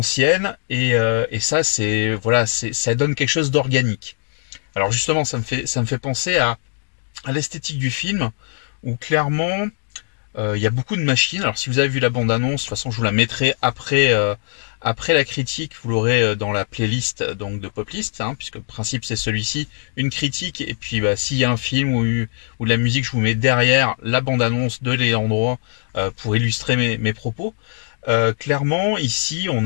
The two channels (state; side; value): silent; right; 58 dB below the other